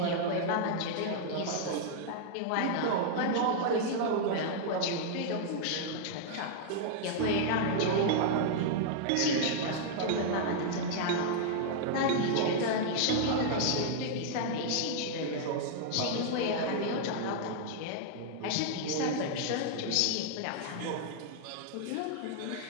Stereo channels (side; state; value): both; different; correlation -0.01